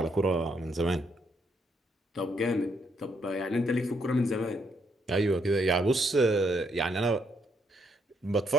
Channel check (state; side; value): normal; both; correlation 0.74